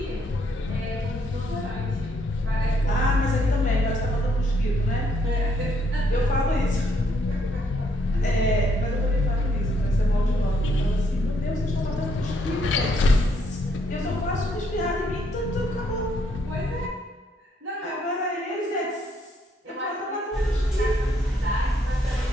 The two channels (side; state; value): both; normal; correlation 0.72